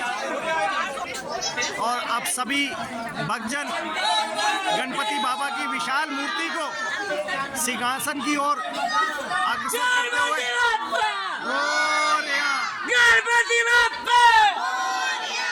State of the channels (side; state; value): both; identical; correlation 1.00